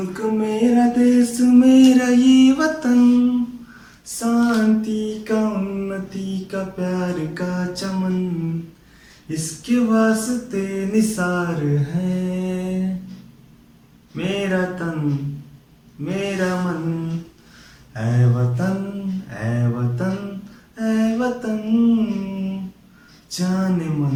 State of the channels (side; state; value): both; identical; correlation 1.00